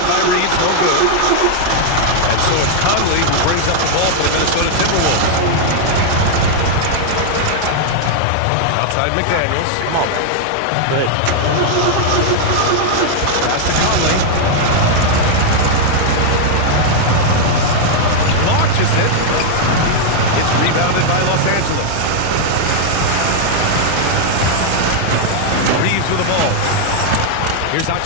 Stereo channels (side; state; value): both; different; correlation 0.00